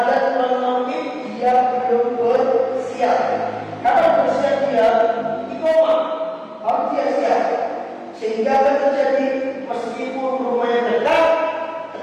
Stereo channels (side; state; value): both; identical; correlation 1.00